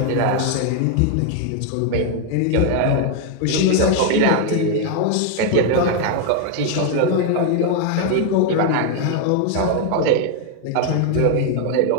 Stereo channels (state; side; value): different; both; correlation 0.01